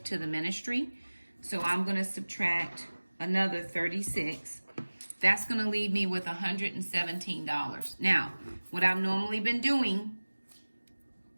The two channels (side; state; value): both; inverted; correlation -1.00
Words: to the ministry. So I'm going to subtract another 36. That's going to leave me with $117. Now, what I've normally been doing,